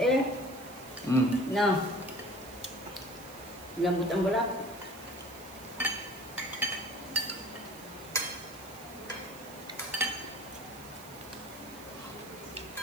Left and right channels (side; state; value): right; noise; hiss, 19 dB below the sound